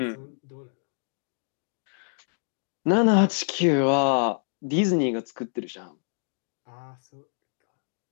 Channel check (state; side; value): silent; right; digital silence